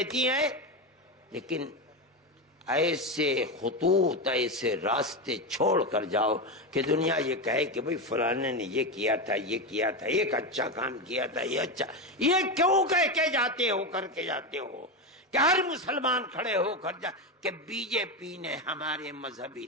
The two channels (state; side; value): normal; both; correlation 0.14